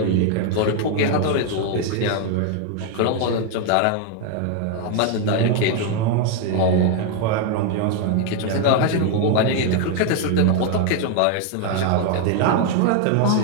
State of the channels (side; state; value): both; different; correlation 0.01